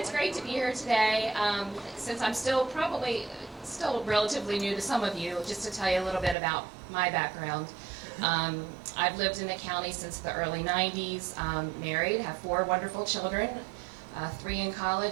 great to be here today. Since I'm still relatively new to some of you, just to tell you a little bit about my background. I've lived in the county since the early 90s, married, have 4 wonderful children, 3 in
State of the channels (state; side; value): drops out; left; at 6.4 s